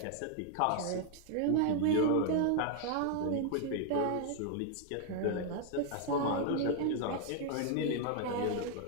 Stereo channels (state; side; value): different; both; correlation 0.00